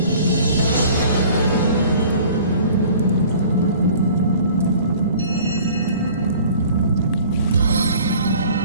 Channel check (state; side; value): inverted; both; correlation -0.48